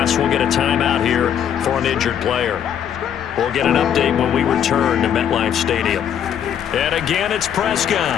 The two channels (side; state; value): right; quieter; 9.2 dB